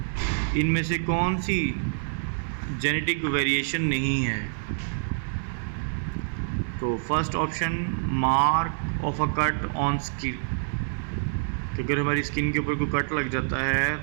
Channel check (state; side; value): silent; left; digital silence